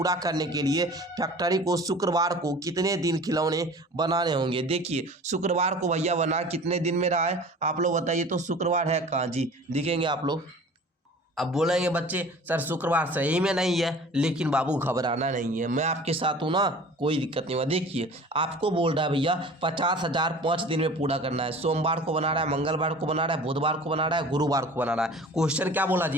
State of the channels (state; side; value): normal; both; correlation 0.43